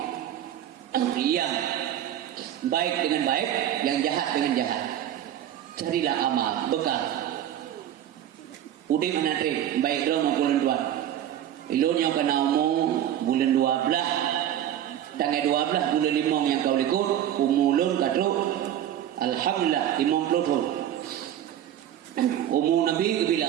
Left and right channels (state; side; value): quieter; left; 11.1 dB